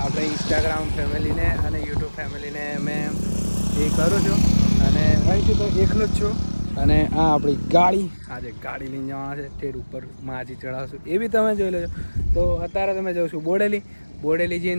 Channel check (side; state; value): both; inverted; correlation -1.00